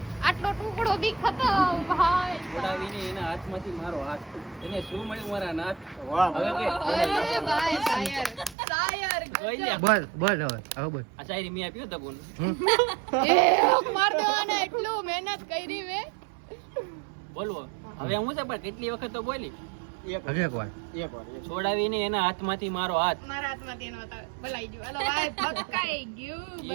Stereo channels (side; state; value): left; drops out; at 8.6 s